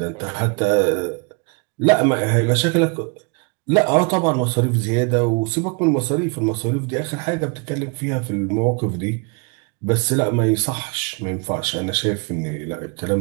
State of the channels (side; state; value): left; quieter; 33.3 dB